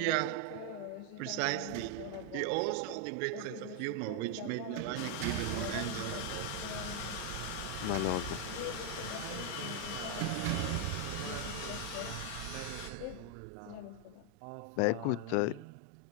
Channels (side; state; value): both; different; correlation 0.00